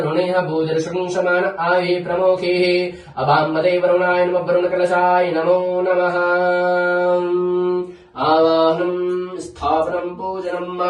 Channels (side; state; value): both; identical; correlation 1.00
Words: भूदर्शंशमान आये प्रमोखे अबाम्बदे वरुणाय नमः वरुणकलशाय नमो नमः। आवाहनम् स्थापनम् पूजनम्